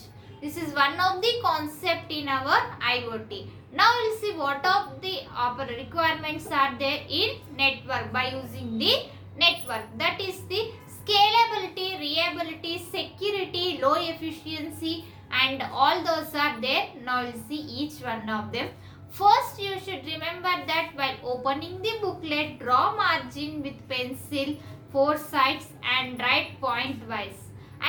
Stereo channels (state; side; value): identical; both; correlation 1.00